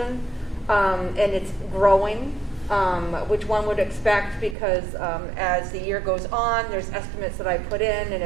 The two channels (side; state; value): left; drops out; at 4.5 s